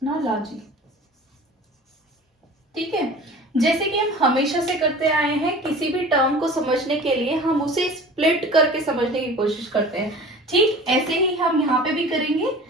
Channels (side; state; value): both; normal; correlation 0.41